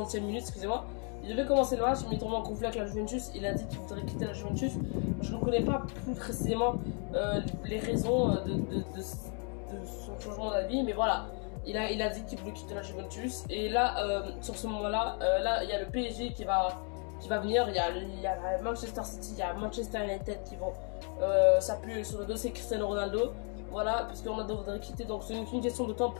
minute, excusez-moi. Il devait commencer le match, mais il est tombé en conflit avec la Juventus. Il a dit qu'il voudrait quitter la Juventus. Je ne connais pas plus précisément les raisons de son changement d'avis, mais voilà. Il a dit qu'il voulait quitter la Juventus. Et là, sur ce moment-là, là, il y a le PSG qui va venir. Il y a Manchester City, il y a Manchester United qui vont s'appuyer sur le dossier Cristiano Ronaldo. Voilà, parce que Ronaldo voudrait quitter, donc c'est une question de temps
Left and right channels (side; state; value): right; quieter; 39.7 dB